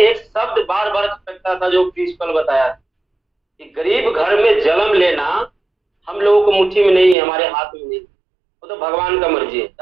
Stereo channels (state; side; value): drops out; left; at 7.2 s